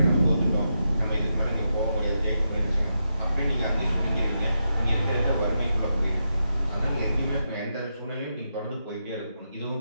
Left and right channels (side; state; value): both; inverted; correlation -0.85